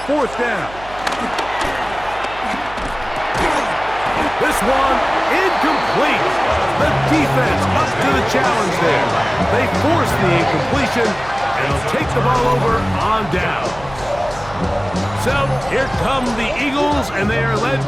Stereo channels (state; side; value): noise; right; hum, 17 dB below the sound